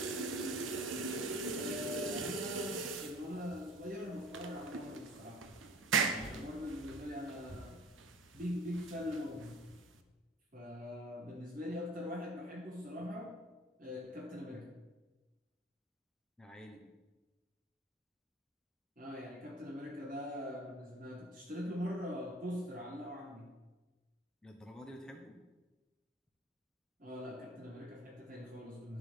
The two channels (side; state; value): both; normal; correlation 0.45